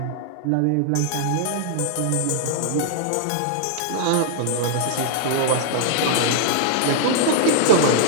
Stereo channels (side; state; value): both; different; correlation -0.01